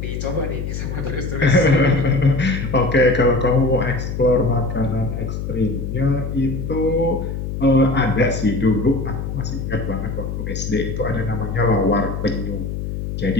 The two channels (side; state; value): left; noise; hum, 5 dB below the sound